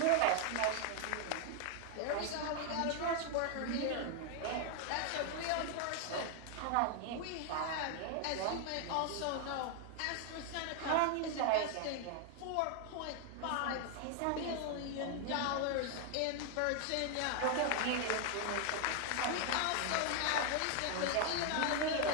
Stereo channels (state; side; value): different; both; correlation 0.00